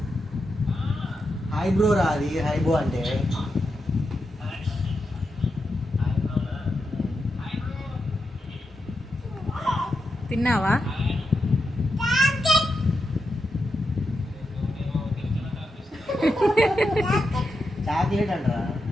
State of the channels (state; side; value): normal; both; correlation 0.86